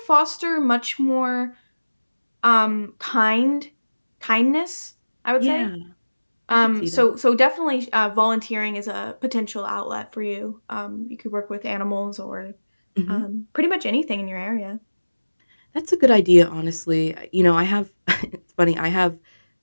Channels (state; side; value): inverted; both; correlation -1.00